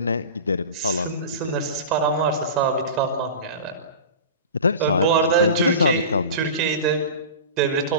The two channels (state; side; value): inverted; both; correlation -0.32